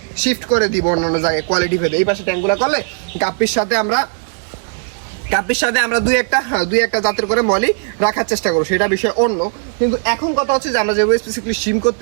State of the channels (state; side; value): silent; left; digital silence